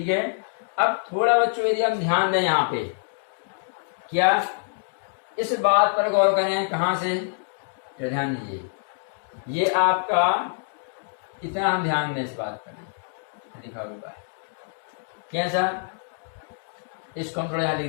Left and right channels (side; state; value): right; silent; digital silence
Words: है। अब थोड़ा बच्चों यदि हम ध्यान दें यहाँ पे, क्या इस बात पर गौर करें, कहाँ से? तो ध्यान दीजिए, ये आपका इतना हम ध्यान दें इस बात पर लिखा हुआ है कैसा, इसको हम थोड़ा यहाँ